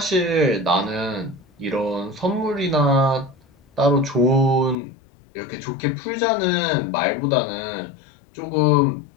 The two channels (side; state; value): right; drops out; at 4.8 s